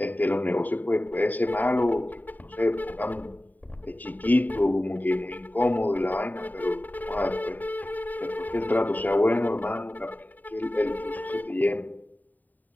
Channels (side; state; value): right; late; 0.085 ms